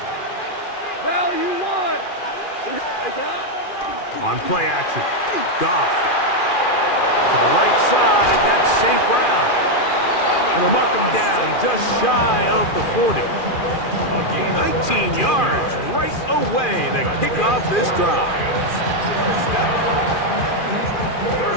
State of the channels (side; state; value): right; late; 2.4 ms